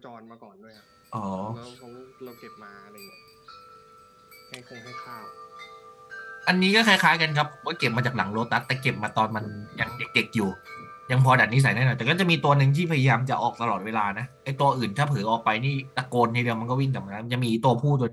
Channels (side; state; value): both; identical; correlation 1.00